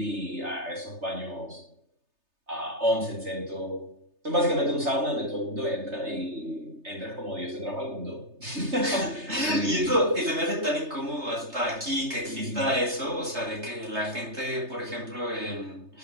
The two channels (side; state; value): left; late; 3.3 ms